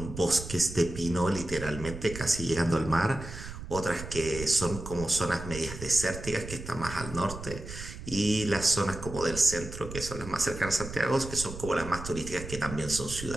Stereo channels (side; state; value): right; noise; rumble, 10 dB below the sound